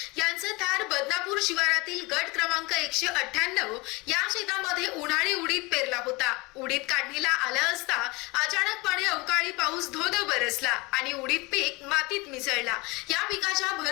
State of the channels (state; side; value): quieter; right; 25.0 dB